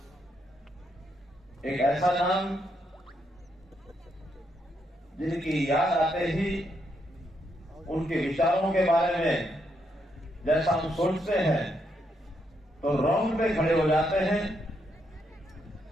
एक ऐसा नाम जिनकी याद आते ही उनके विचारों के बारे में जैसा हम सोचते हैं तो रोंगटे खड़े हो जाते हैं।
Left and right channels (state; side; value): normal; both; correlation 0.78